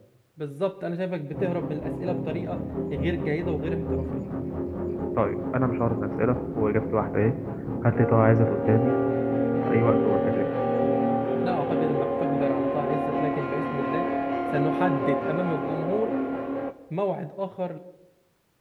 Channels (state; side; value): identical; both; correlation 1.00